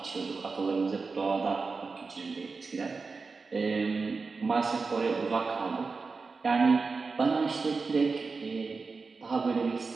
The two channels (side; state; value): left; quieter; 4.4 dB